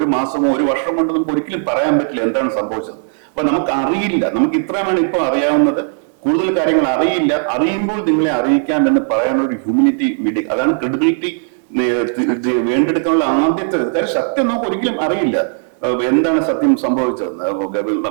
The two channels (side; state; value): left; silent; digital silence